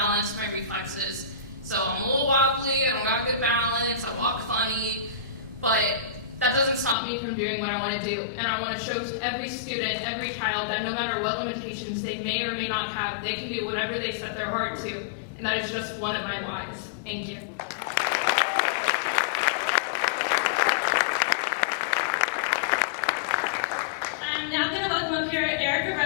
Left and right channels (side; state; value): right; drops out; at 7.0 s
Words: my reflexes. So I'm a little wobbly, I don't got good balance, I walk funny, but that doesn't stop me from doing what I want to do. And I want to show to every student, every child, that no matter what limitations they may or may not have, they can do whatever they set their heart to. And that is just one of my whys. Thank you. I'm now going to welcome up here Erica